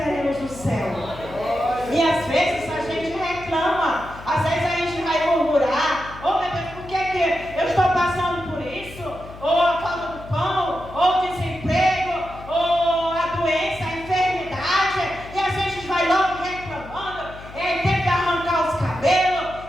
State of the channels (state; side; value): noise; left; hum, 16 dB below the sound